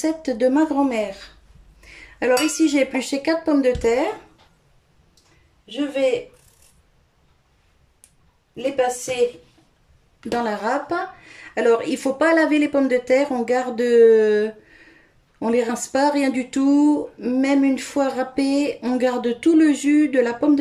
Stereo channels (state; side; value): identical; both; correlation 1.00